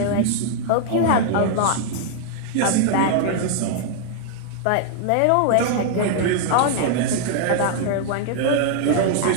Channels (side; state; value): both; different; correlation -0.01